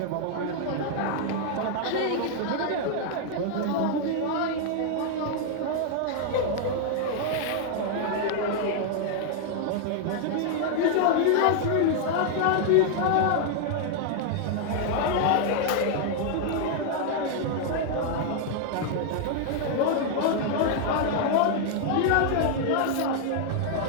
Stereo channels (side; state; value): both; different; correlation 0.00